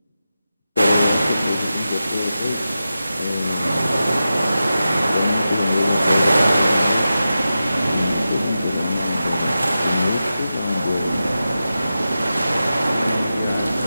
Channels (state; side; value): inverted; both; correlation -0.92